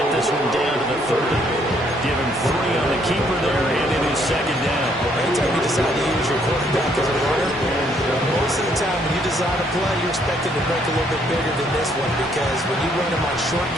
this one down to the 30. Give him 3 on the keeper there, and it is second down. Anytime you decide to use your quarterback as a runner, most of the time when you design a play, you're expected to break a little bit bigger than this one, because when you run him on short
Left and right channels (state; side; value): normal; both; correlation 0.68